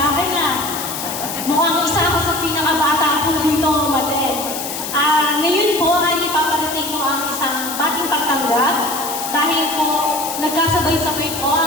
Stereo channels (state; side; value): noise; left; hiss, 6 dB below the sound